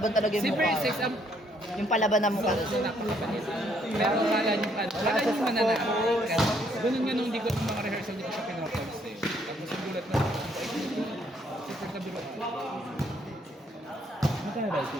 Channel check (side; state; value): both; normal; correlation 0.69